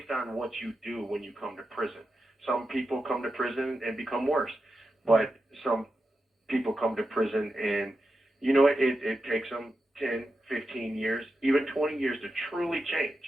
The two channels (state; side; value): normal; both; correlation 0.89